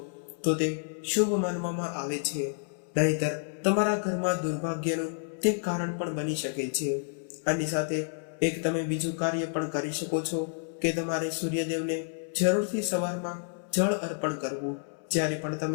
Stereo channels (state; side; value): silent; right; 58 dB below the other